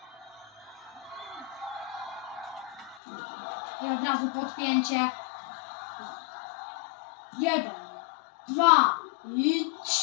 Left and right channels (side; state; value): right; drops out; at 3.0 s